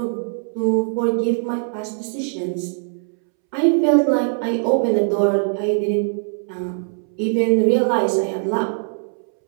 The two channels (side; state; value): left; silent; 65 dB below the other